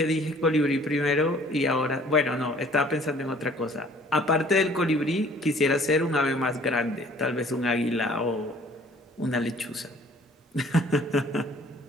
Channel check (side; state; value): both; normal; correlation 0.54